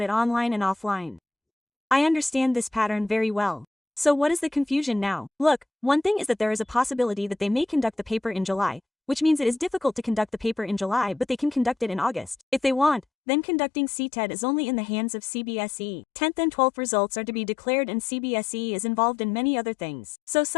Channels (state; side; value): drops out; right; at 13.1 s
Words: it online and offline. I understand this pattern very well. So what is the confusion now? Look, one thing is that there is a possibility that they may conduct the paper in July, which means it is difficult to conduct the paper in July but they can conduct it in August. If they want, then conducting ctet is only in the hands of CBSE. 10th and 12th results are to be declared and CBSE is involved in many other things. So